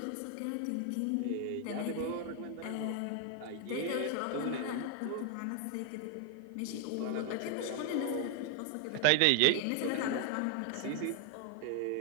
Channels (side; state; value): both; different; correlation 0.00